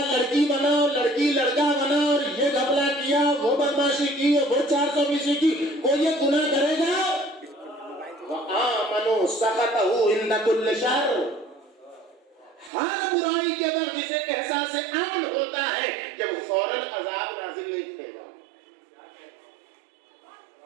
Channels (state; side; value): drops out; left; at 12.7 s